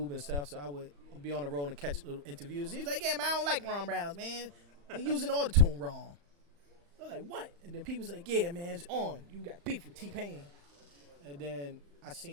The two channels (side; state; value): left; late; 35 ms